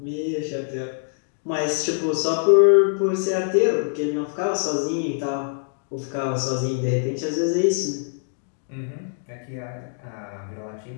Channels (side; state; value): right; silent; digital silence